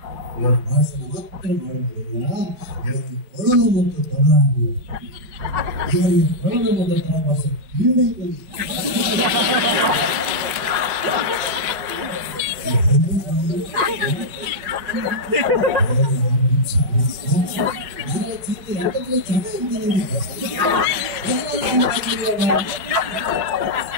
ಇವರು ಭಾಷಣ ಮಾತ್ರ ಮಾಡುವುದಿಲ್ಲ ಇವರಿಗೆ ಕೊಡಲು ಮತ್ತು ತಬಲ ಇವರಿಗೆ ಕೊಡಲು ಮತ್ತು ತಬಲ ಭಾಷೆ ಹಿಂದೆ ಎಲ್ಲ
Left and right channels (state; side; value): late; left; 5.2 ms